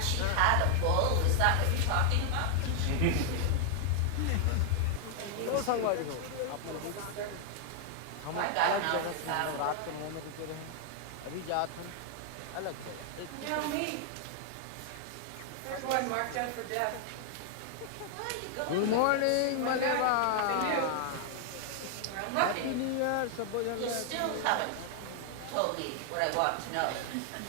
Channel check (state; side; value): different; both; correlation 0.00